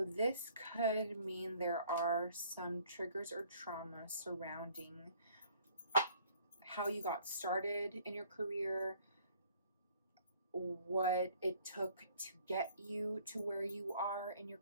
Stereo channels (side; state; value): both; inverted; correlation -0.58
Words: this could mean there are some triggers or trauma surrounding how you got started in your career, what it took to get you to where you are in your